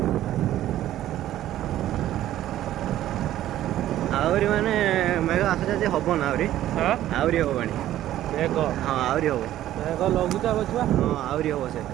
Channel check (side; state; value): left; quieter; 13.1 dB